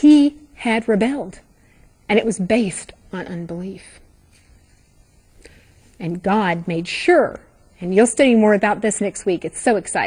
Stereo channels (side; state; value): both; identical; correlation 1.00